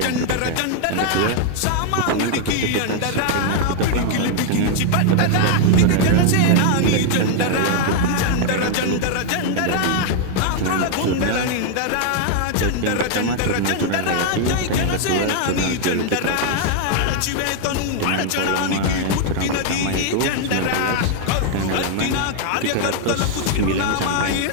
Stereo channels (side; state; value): both; different; correlation 0.00